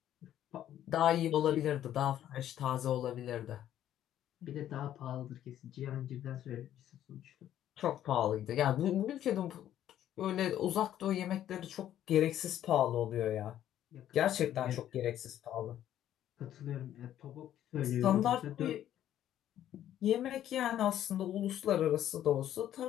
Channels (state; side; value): quieter; right; 11.5 dB